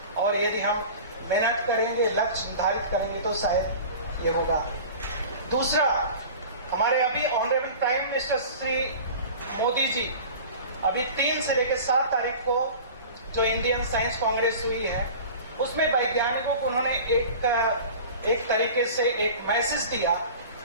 और यदि हम मेहनत करेंगे, लक्ष्य निर्धारित करेंगे तो शायद ये होगा। दूसरा, हमारे अभी honourable prime minister Shri Modi ji अभी 3 से लेकर 7 तारीख को जो इंडियन साइंस कांग्रेस हुई है, उसमें वैज्ञानिकों को उन्होंने एक तरीके से एक मैसेज दिया,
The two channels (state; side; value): inverted; both; correlation -0.38